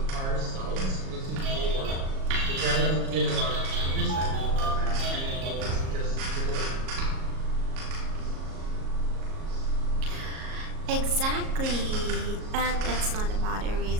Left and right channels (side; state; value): left; late; 37 ms